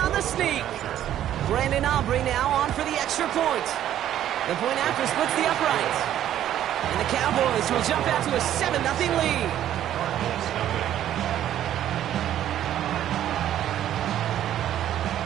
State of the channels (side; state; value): left; quieter; 11.5 dB